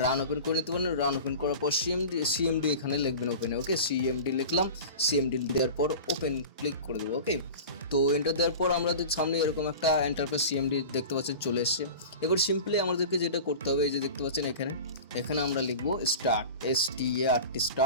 রান ওপেন করে নিতে পারেন। রান ওপেন করার পর সিএমডি এখানে লিখবেন ওপেনে। ওকে, সিএমডি লিখলাম, সিএমডি দেওয়ার পর ওপেন ক্লিক করে দেবো। ওকে, তো এন্টার দেওয়ার পর আমাদের সামনে এরকম একটা এন্টারপ্রাইজ সিএমডি দেখতে পাচ্ছেন চলে এসছে। এবার সিম্পলি আমাদেরকে যেটা করতে হবে, এই যে দেখতে পাচ্ছেন এখানে আমরা লিখবো স্টার্ট,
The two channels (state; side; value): inverted; both; correlation -0.35